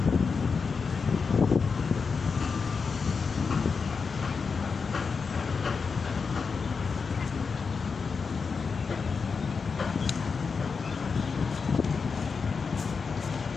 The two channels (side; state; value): right; quieter; 5.2 dB